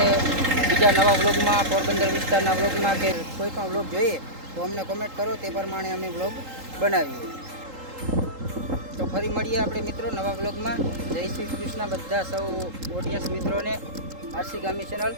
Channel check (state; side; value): late; left; 3.8 ms